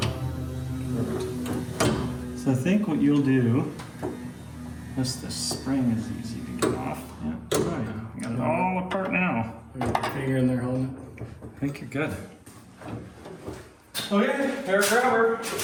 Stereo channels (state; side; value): identical; both; correlation 1.00